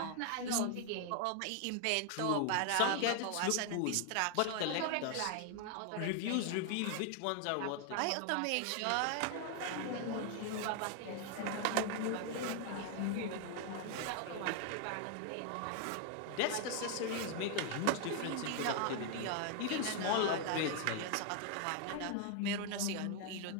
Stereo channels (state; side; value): different; both; correlation 0.00